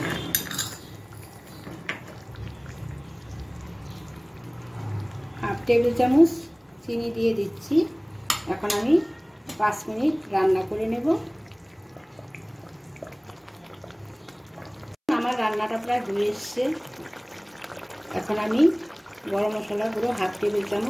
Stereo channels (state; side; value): identical; both; correlation 1.00